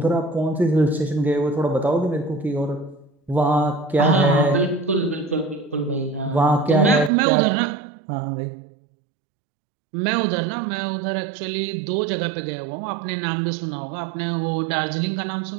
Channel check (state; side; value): drops out; left; at 7.1 s